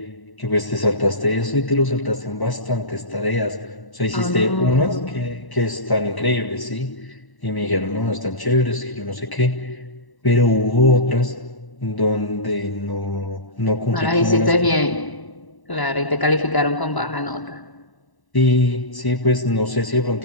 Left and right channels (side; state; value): right; late; 1.0 ms